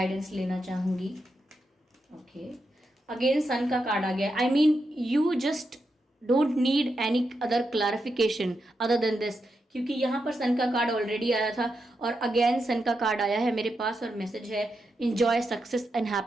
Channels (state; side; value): normal; both; correlation 0.85